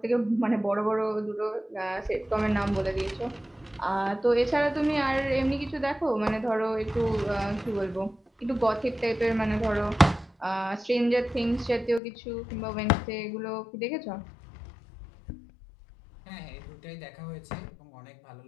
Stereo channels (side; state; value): right; drops out; at 12.0 s